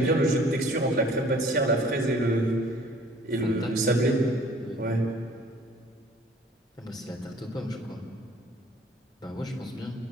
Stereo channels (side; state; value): both; normal; correlation 0.53